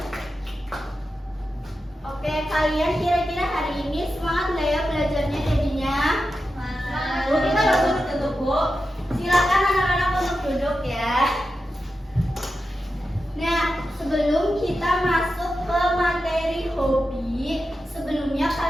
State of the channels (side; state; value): both; normal; correlation 0.90